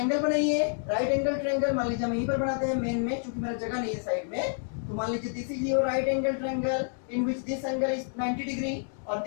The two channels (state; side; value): silent; right; digital silence